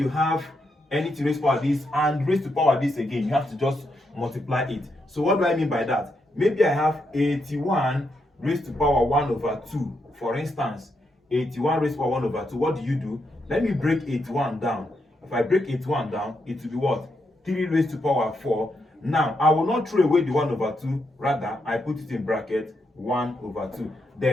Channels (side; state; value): both; normal; correlation 0.81